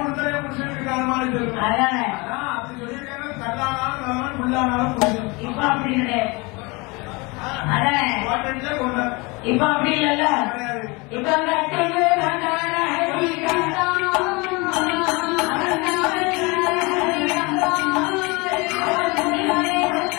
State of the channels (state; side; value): quieter; right; 26.6 dB